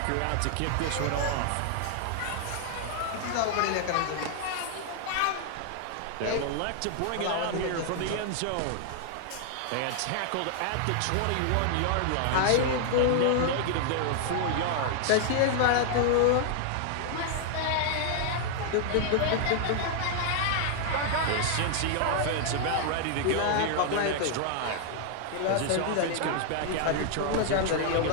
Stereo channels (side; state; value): both; different; correlation 0.00